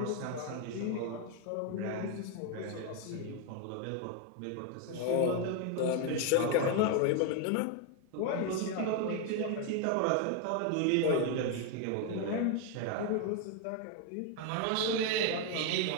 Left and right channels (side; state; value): both; different; correlation 0.01